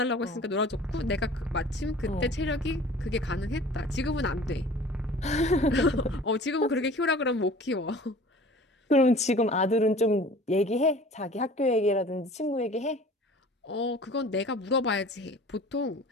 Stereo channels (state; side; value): normal; both; correlation 0.45